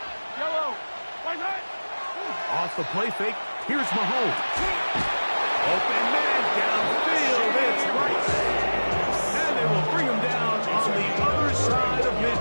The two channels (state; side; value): inverted; both; correlation -1.00